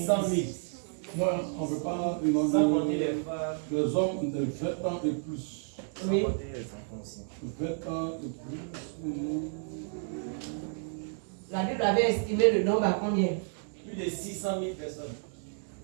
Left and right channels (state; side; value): silent; left; 57 dB below the other